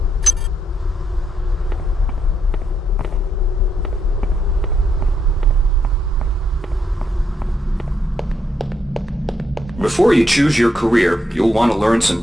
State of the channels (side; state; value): both; normal; correlation 0.78